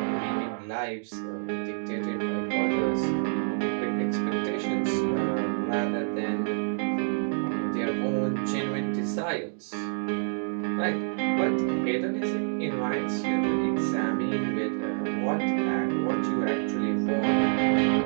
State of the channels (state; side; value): silent; left; digital silence